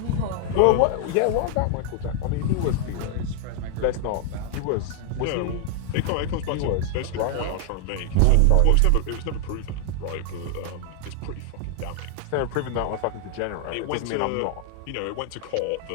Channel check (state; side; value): different; both; correlation 0.00